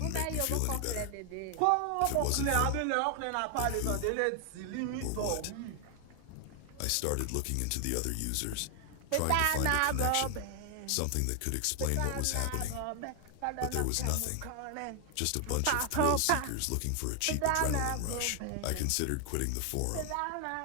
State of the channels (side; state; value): both; different; correlation 0.00